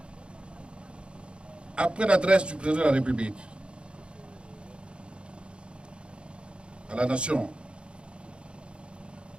Après l'adresse du président de la République à la nation,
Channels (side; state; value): left; late; 0.056 ms